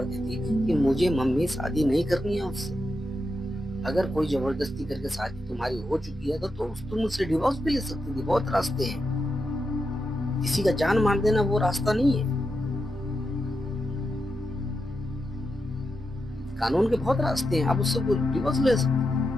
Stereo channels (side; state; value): both; normal; correlation 0.87